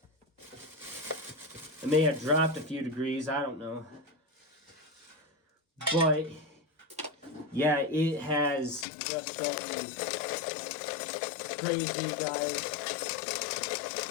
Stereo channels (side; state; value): right; drops out; at 8.8 s